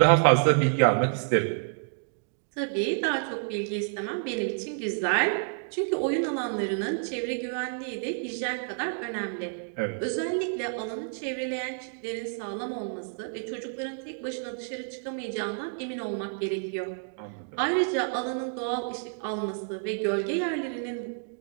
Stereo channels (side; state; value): left; silent; digital silence